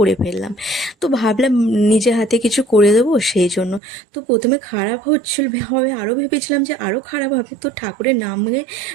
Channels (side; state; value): left; drops out; at 3.8 s